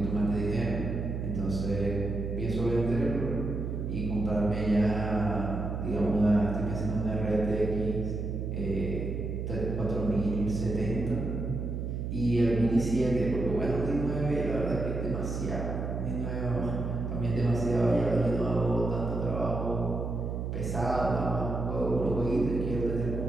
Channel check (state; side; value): noise; right; hum, 3 dB below the sound